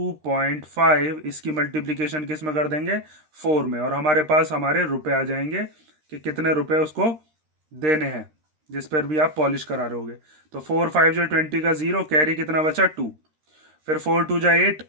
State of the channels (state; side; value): late; left; 13 ms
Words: इसकी मल्टीप्लीकेशन किस में कर देंगे, 4 में, और हमारे पास हमारे रुपए आ जाएंगे कि कितने रुपए उसको देने हैं जिस पर भी आप पॉलिश करा रहे होगे। तो 4 5 जो 20 का 0, कैरी कितना बचा 2, फिर 4 2 जा 8,